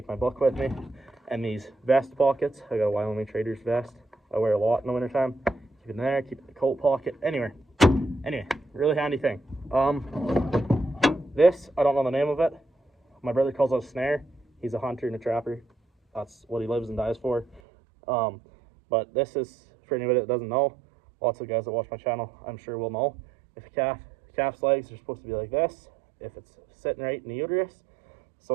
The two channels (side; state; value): left; drops out; at 17.6 s